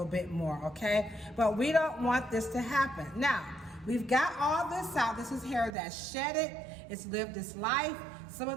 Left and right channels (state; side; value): drops out; left; at 5.8 s